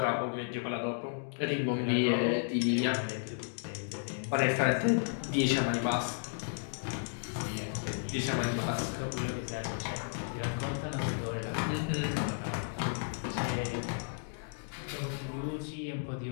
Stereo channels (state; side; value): silent; right; digital silence